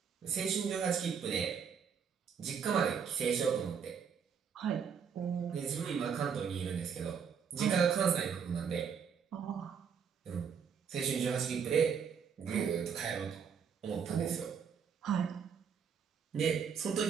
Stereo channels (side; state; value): left; quieter; 6.9 dB